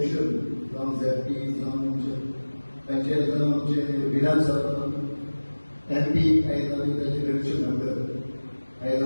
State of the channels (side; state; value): both; inverted; correlation -1.00